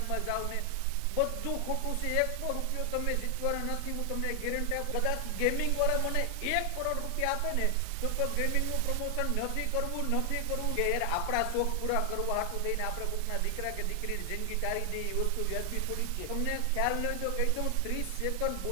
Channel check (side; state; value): both; different; correlation 0.00